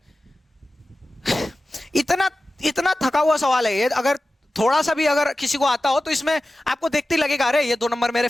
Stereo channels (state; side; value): normal; both; correlation 0.95